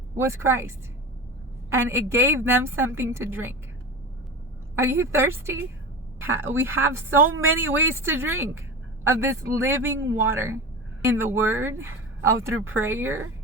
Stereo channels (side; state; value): both; normal; correlation 0.29